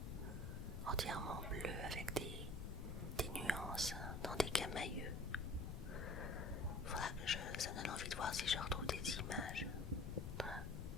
Entièrement bleus avec des nuances dans des camailleux. Faudra que ça me donne envie de voir si je retrouve des images.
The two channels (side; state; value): left; noise; rumble, 4 dB below the sound